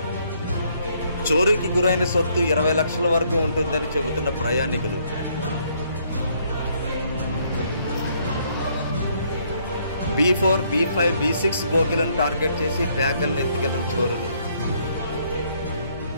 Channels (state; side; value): inverted; both; correlation -0.68